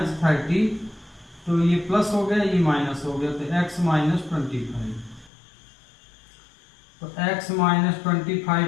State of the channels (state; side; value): drops out; right; at 5.3 s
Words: तो ये प्लस हो गया, ये माइनस हो गया, तो x माइनस 25, तो x माइनस 25